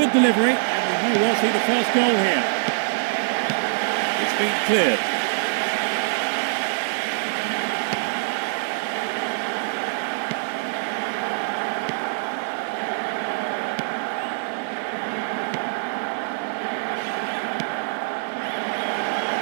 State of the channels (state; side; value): silent; left; digital silence